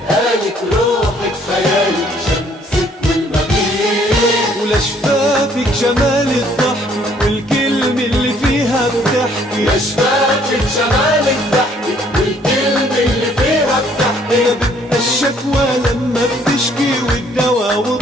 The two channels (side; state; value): both; normal; correlation 0.63